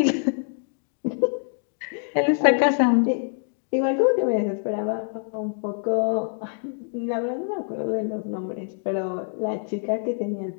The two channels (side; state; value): right; silent; 62 dB below the other